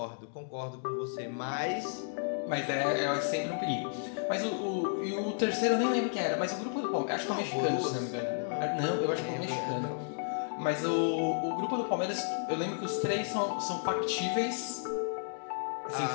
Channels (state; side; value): silent; right; digital silence